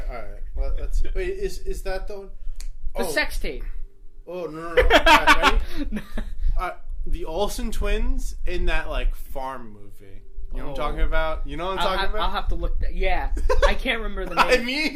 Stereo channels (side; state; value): both; identical; correlation 1.00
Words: All right. Well, wait. Is that the one? The sex tape. Oh, no. Ready? The Olsen twins in that, like, farm movie. You know what I'm talking about? You know what I'm talking about? I'll have to look that. Yeah. I can't remember the